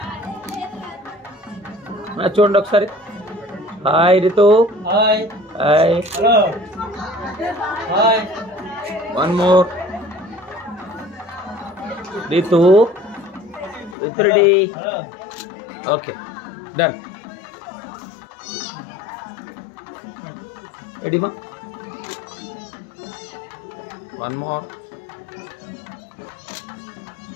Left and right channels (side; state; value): right; drops out; at 14.0 s